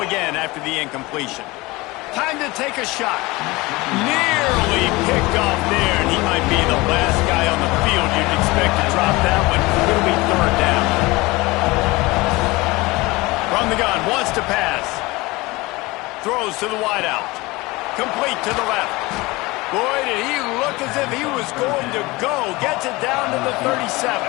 again after the incompletion. Time to take a shot. Nearly picked off there, and he might be the last guy on the field you'd expect to drop that one. It'll be third down. From the gun, wants to pass. Throws to the wideout. Complete to the left. Boy, did he look as if he was going to go. Gets it down to the 37.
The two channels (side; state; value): right; quieter; 22.2 dB